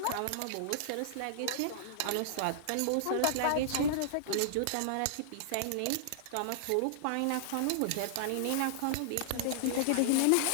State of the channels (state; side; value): different; both; correlation -0.01